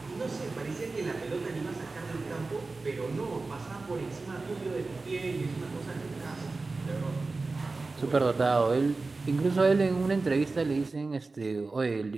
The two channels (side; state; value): left; quieter; 3.7 dB